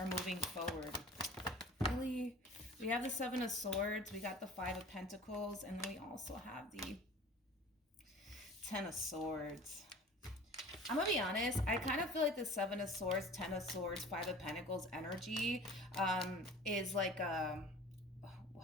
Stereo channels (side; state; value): both; normal; correlation 0.43